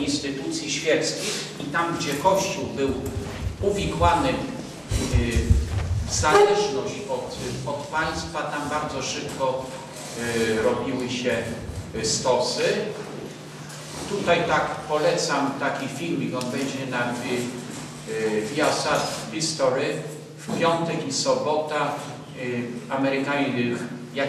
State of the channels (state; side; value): identical; both; correlation 1.00